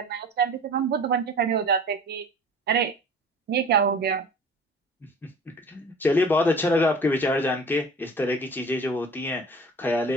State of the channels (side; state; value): both; normal; correlation 0.42